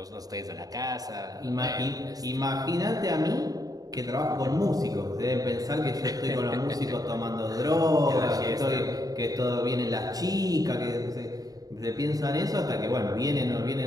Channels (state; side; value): late; left; 0.18 ms